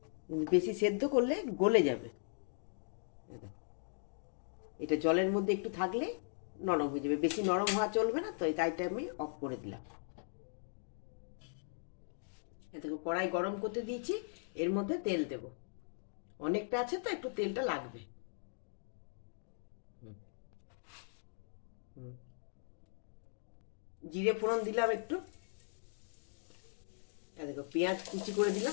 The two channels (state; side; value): silent; right; digital silence